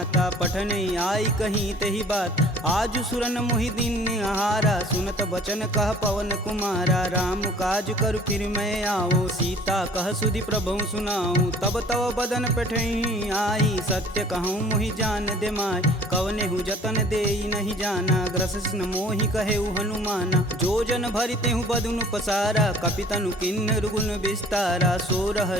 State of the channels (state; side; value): normal; both; correlation 0.51